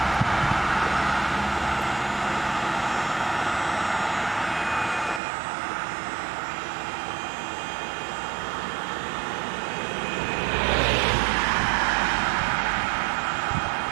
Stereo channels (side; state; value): left; drops out; at 5.2 s